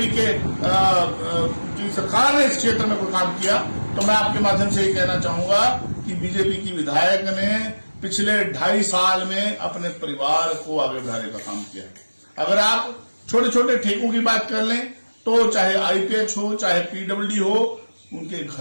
के की सरकार ने इस क्षेत्र में कोई काम किया, तो मैं आपके माध्यम से ये कहना चाहूंगा कि बीजेपी की विधायक ने पिछले 2.5 साल में अपने परिवार को आगे बढ़ाने का काम किया। अगर आप छोटे छोटे ठेकों की बात कर लें तो चाहे आईपीएच हो, चाहे पीडब्ल्यूडी हो, उनके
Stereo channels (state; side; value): inverted; both; correlation -1.00